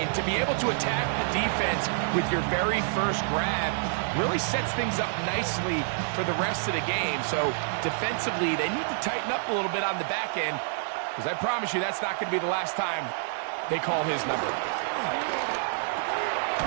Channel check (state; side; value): silent; left; digital silence